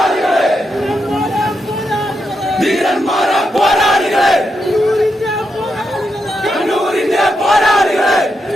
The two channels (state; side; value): normal; both; correlation 0.84